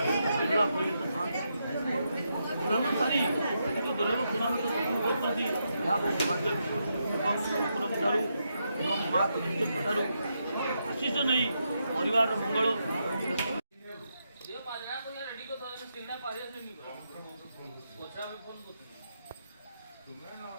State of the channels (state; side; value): inverted; both; correlation -0.82